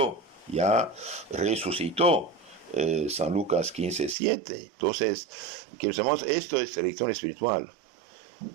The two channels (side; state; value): left; drops out; at 4.2 s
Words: ya resucitó. San Lucas 15:7. Entonces, queridos hermanos, esto es elección espiritual.